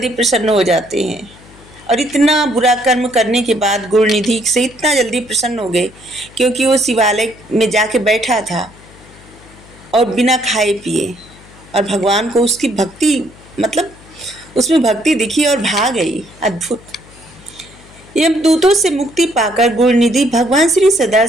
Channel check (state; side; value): noise; left; hum, 23 dB below the sound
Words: प्रसन्न हो जाते हैं। और इतना बुरा कर्म करने के बाद गुरुनिधि से इतना जल्दी प्रसन्न हो गए, क्योंकि वो शिवालय में जाके बैठा था और बिना खाए पिए, और भगवान को उसकी भक्ति मतलब उसमें भक्ति दिखी और भाग गई। अद्भुत। यमदूतों से मुक्ति पाकर गुरुनिधि भगवान श्री